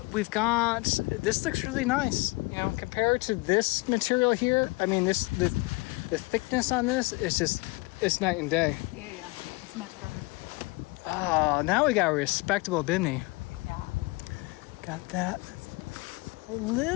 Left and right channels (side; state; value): right; quieter; 25.5 dB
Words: we've got. This looks really nice. Compared to this material here. I mean, the thickness on this is just. It's night and day. Yeah, it's much better. Oh, now we got a respectable Bimini. Yeah. Got that. A